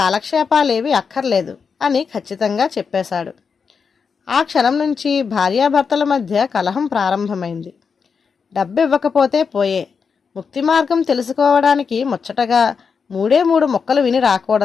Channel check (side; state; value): right; quieter; 5.8 dB